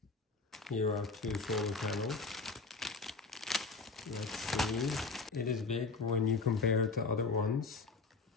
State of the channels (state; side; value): quieter; right; 4.3 dB